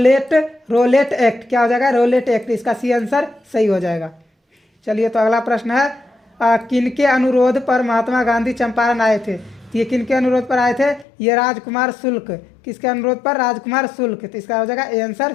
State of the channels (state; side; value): drops out; right; at 11.1 s